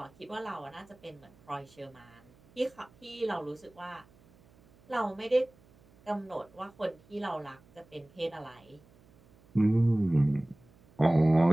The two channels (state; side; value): noise; right; hum, 28 dB below the sound